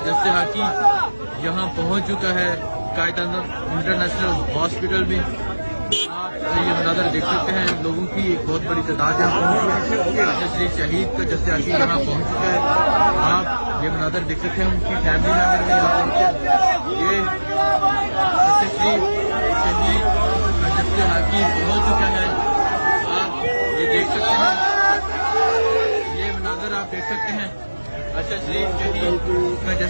जस्ते हाकी यहाँ पहुँच चुका है कायदा इंटरनेशनल हॉस्पिटल में। आप ये मनाज़र देख सकते हैं, लोगों की एक बहुत बड़ी तादाद यहाँ पहुँची है। अरशद शरीफ शहीद का जस्ते हाकी यहाँ पहुँच चुका है। आप ये मनाज़र देख सकते हैं, उनकी फैमिली मेंबर भी यहाँ पहुँचे। ये अरशद शरीफ शहीद का जस्ते हाकी पहुँच चुका है। ये देख सकते हैं, ये मनाज़र आप देख सकते हैं अरशद शरीफ शहीद का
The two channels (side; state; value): both; inverted; correlation -1.00